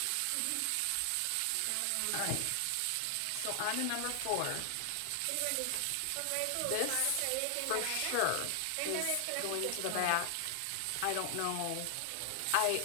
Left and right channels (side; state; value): both; different; correlation 0.00